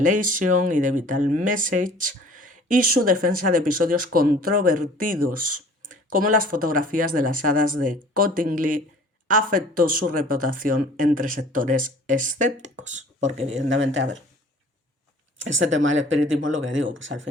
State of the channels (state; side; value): normal; both; correlation 0.49